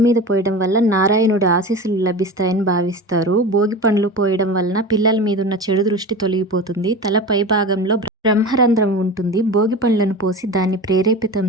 పోయడం వల్ల నారాయణుడి ఆశీస్సులు లభిస్తాయని భావిస్తారు. భోగి పండ్లు పోయడం వలన పిల్లల మీద ఉన్న చెడు దృష్టి తొలగిపోతుంది. తల పై భాగంలో బ్రహ్మరంధ్రం ఉంటుంది. భోగి పండ్లను పోసి దాన్ని ప్రేరేపితం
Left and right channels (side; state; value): both; normal; correlation 0.30